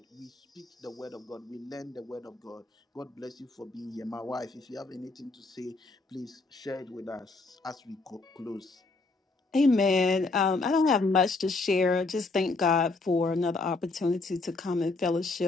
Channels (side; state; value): right; quieter; 3.5 dB